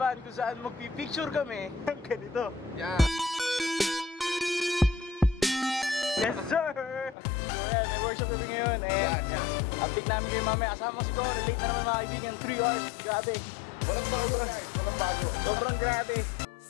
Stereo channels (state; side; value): drops out; right; at 7.2 s